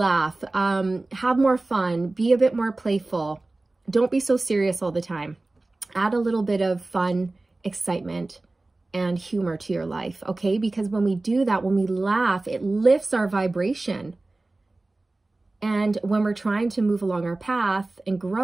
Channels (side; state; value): left; quieter; 3.0 dB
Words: have more fun, be a bit more playful. Don't be so serious all the time. Add a little bit of fun, excitement, and humor to your life, okay? Because when we do that, when we laugh, it lifts our vibration. And when we're trying to move along our path and